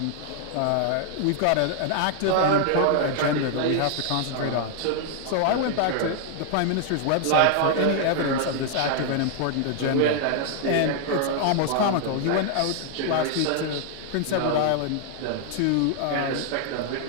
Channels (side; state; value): both; different; correlation 0.00